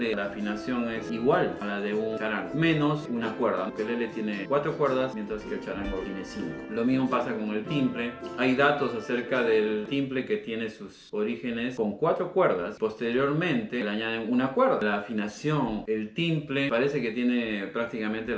la afinación es igual a la de un charango, menos una cuerda. El ukelele tiene 4 cuerdas, mientras que el charango tiene 5. Lo mismo pasa con el timple. Hay datos acerca del timple que tiene sus orígenes con 4 cuerdas. Posteriormente le añaden una cuerda. La afinación, el timple parece que tiene prácticamente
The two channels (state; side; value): identical; both; correlation 1.00